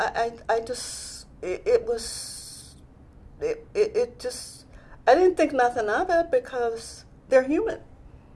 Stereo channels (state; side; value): identical; both; correlation 1.00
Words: didn't think nothing of it because they're human,